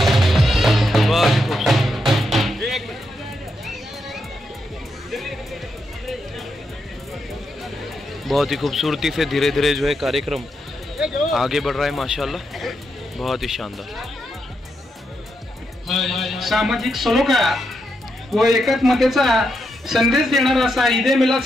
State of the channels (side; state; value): both; normal; correlation 0.83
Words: बहुत ही खूबसूरती से धीरे धीरे जो है कार्यक्रम आगे बढ़ रहा है माशाल्लाह, बहुत ही शानदार। सामाजिक सलोखा व एकात्मतेचा संदेश देणारा असा ईद ए मिलाद